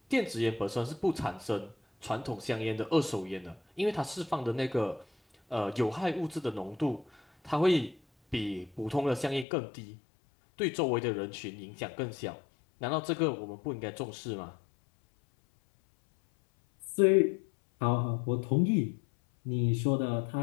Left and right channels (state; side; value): drops out; right; at 9.5 s